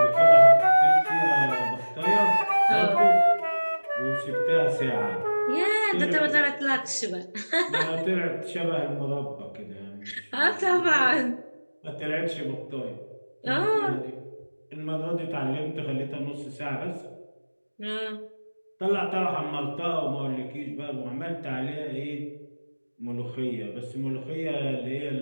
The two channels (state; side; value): inverted; both; correlation -1.00